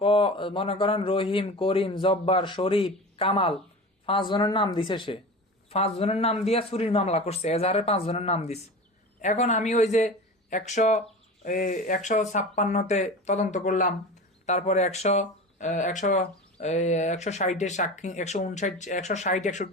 মনে করেন রহিম, করিম, জব্বার, শরীফ, কামাল 5 জনের নাম দিছে, সে 5 জনের নাম দিয়ে চুরির মামলা করছে, এজাহারে 5 জনের নাম দিছে। এখন আমি ওই যে 156-তে তদন্ত করলাম, তারপরে 160-এর সাক্ষী,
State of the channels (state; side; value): normal; both; correlation 0.32